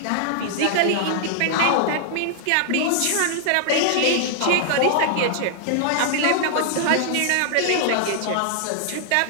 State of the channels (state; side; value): different; both; correlation -0.01